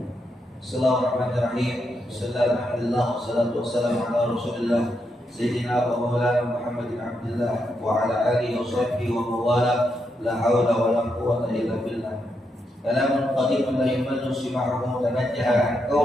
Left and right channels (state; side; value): normal; both; correlation 0.82